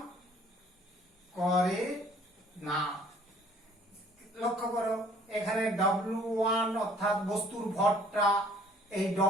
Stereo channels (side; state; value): both; normal; correlation 0.56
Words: লক্ষ্য করো এখানে W1 অর্থাৎ বস্তুর ভরটা এই